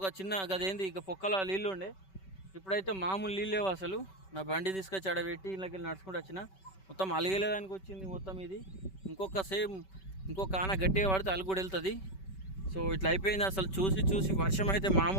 చిన్న గదేంది ఇక పొక్కల నీళ్ళు ఉండే. ఇప్పుడైతే మామూలు నీళ్ళు లేవు అసలు. నా బండి తీసుకొచ్చి ఆడబెట్టి ఇళ్ళకి వెళ్ళి నడుచుకుంటూ వచ్చిన, మొత్తం అలిగేదానికి వచ్చింది మొత్తం ఇది. ఇంకొక ఆన గట్టిగా పడితే అలుగు కూడా వెళ్తుంది. సో ఇట్లా అయిపోయింది అసలు. చూసి వర్షం అయితే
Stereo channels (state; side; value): late; right; 5.2 ms